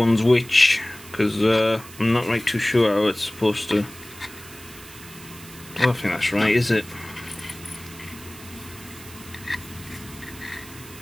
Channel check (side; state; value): right; noise; hiss, 18 dB below the sound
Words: which, because I'm not right too sure how it's supposed to. I don't think that's right, is it?